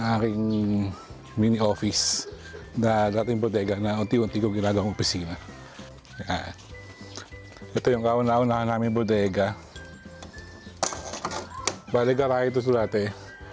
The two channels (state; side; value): identical; both; correlation 1.00